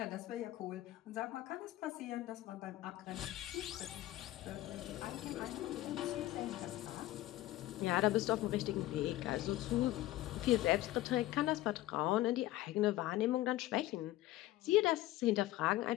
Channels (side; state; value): right; quieter; 16.1 dB